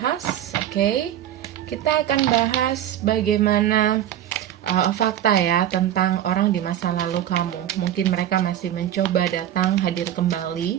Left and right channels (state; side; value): quieter; left; 11.3 dB